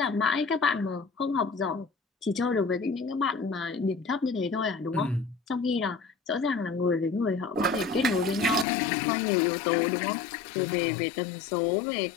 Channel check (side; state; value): right; drops out; at 8.7 s